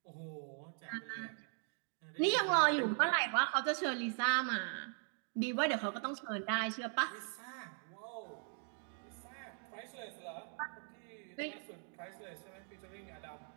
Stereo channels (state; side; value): silent; left; 51 dB below the other